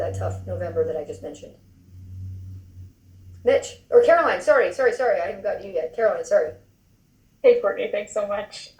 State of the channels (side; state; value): both; identical; correlation 1.00